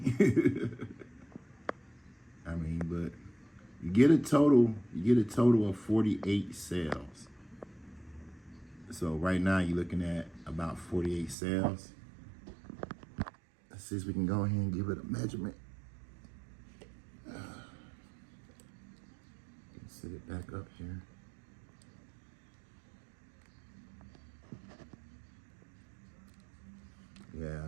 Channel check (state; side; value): drops out; left; at 11.4 s